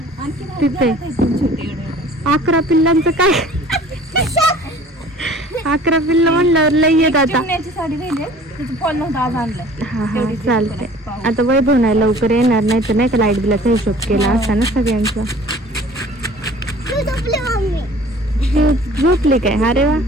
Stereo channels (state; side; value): normal; both; correlation 0.48